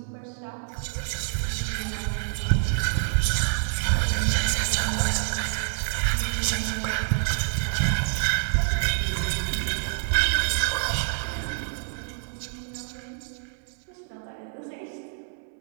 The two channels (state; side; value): silent; left; 60 dB below the other